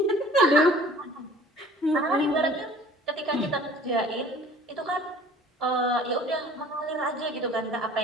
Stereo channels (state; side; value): normal; both; correlation 0.49